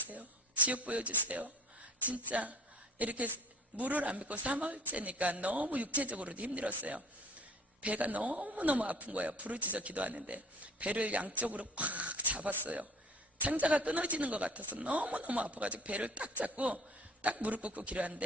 지옥 보여주세요. 진짜 이렇게 물을 안 믿고 3월째니까 너무 육체적으로도 힘들었어요. 배가 너무너무 아픈 거예요. 부르짖어 기도하는데 배를 양쪽으로 꽉 잡았어요. 창자가 끊어지는 것 같아서 너무너무 아파가지고 배를 딱 잡고 딱 무릎 꿇고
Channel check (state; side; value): normal; both; correlation 0.47